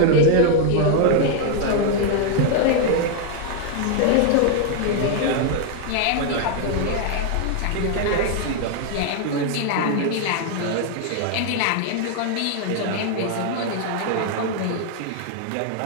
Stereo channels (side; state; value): both; different; correlation 0.00